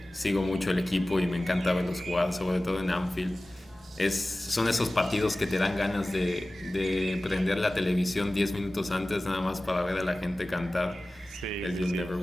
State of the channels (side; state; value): both; normal; correlation 0.97